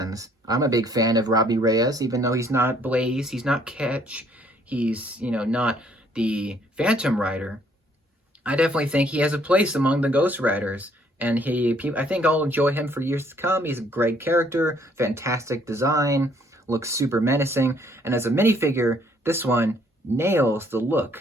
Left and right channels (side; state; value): both; normal; correlation 0.64